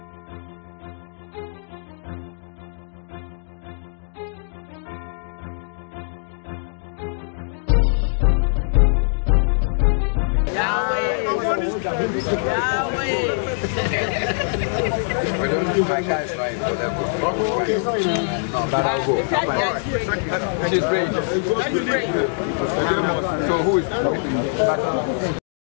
My guys right for them. No, but I'll go. She's great. So who is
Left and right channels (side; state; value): right; silent; digital silence